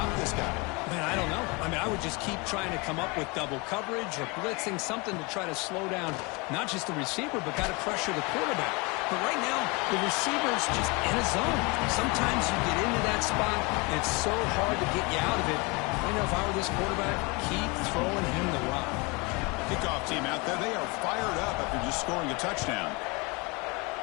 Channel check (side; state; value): right; quieter; 27.9 dB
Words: this guy? Man, I don't know. I mean, I would just keep trying to come up with double coverage or blitzing, something to try to slow down not just the receiver, but got to pressure the quarterback. But right now, the receiver's just in a zone. Sometimes you get into that spot, and it's so hard to get you out of it. I know if I were this quarterback, keep throwing him the rock. Kickoff team out there. They are fired up after just scoring a touchdown.